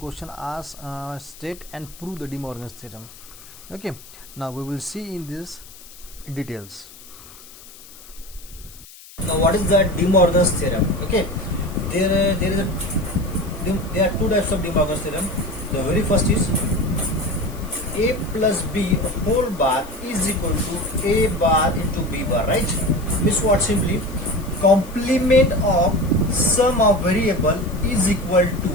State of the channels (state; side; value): noise; left; hiss, 20 dB below the sound